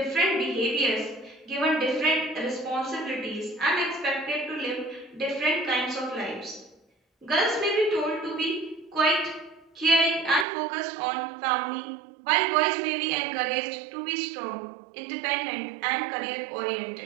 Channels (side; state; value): left; drops out; at 10.5 s